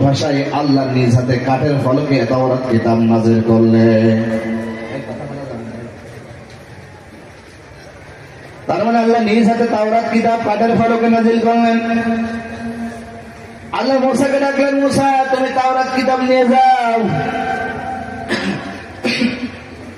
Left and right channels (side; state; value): both; identical; correlation 1.00